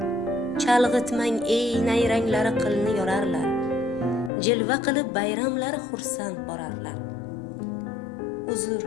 Chalg'itmang ey nayranglari qilni yorarlar. Jilva qilib bayramlari xursand borarlar. Uzr,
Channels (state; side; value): drops out; right; at 4.3 s